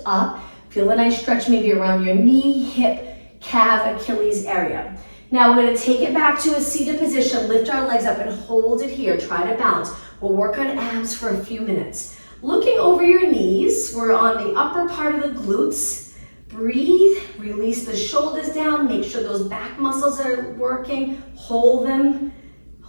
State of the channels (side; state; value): both; inverted; correlation -1.00